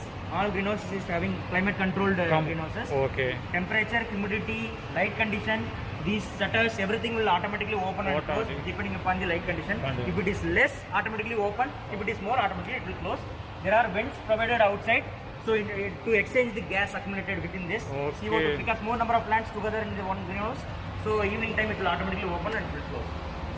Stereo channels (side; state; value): both; identical; correlation 1.00